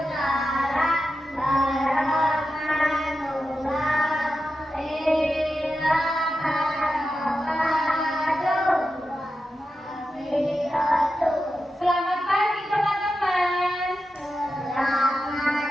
Selamat pagi teman-teman.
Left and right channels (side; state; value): both; normal; correlation 0.91